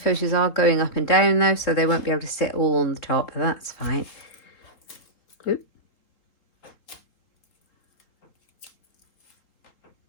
are going up and down though, so they won't be able to sit all on the top, but that's fine. Oop.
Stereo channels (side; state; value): right; late; 3.8 ms